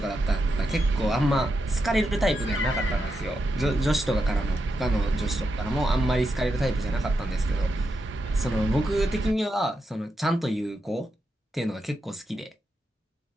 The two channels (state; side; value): normal; both; correlation 0.85